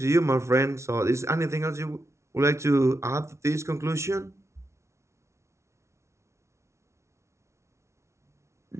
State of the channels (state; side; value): late; left; 0.13 ms